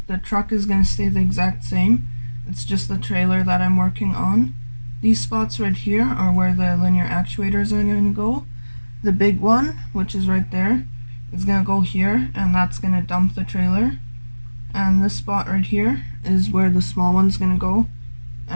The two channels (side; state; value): both; inverted; correlation -1.00